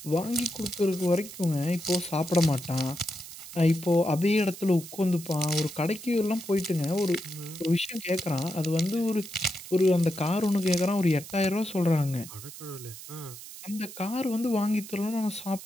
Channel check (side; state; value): right; noise; hiss, 14 dB below the sound